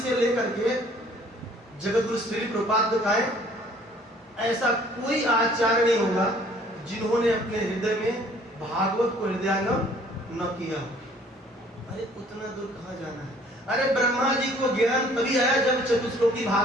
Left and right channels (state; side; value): normal; both; correlation 0.56